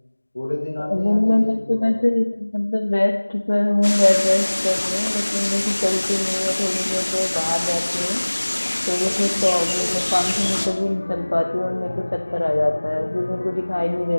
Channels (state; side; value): inverted; both; correlation -1.00